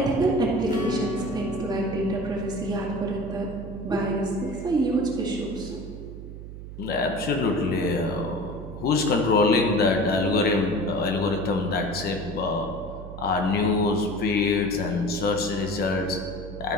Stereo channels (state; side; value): noise; right; hum, 11 dB below the sound